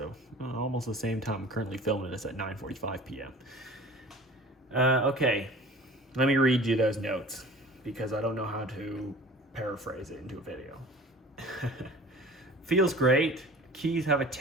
almost the same time. I'm currently filming this at 9:45 p.m. Okay, let me read you those notes because I don't know how to paraphrase it into a video. Feels great. Keys have a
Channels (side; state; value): both; normal; correlation 0.43